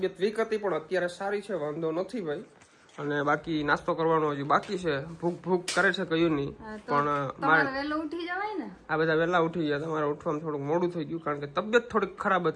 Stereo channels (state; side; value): identical; both; correlation 1.00